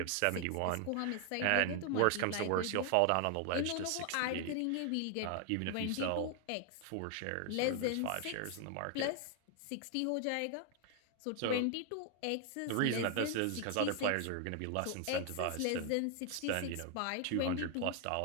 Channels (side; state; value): both; different; correlation 0.00